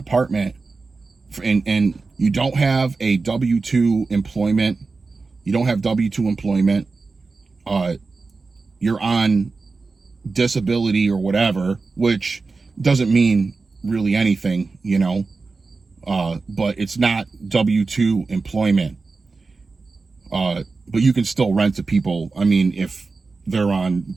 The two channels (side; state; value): left; quieter; 4.1 dB